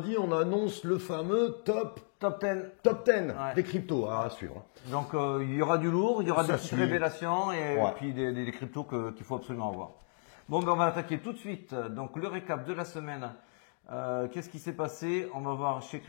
on annonce le fameux top 10 des cryptos à suivre. Donc il y aura du lourd, il y aura Ça des petites suit. révélations et Ouais. puis des cryptos qu'il faut absolument avoir. Bon, ben on va attaquer tout de suite. Donc le récap de la semaine. Qu'est-ce qui s'est passé? On va voir chez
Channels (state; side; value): silent; right; 56 dB below the other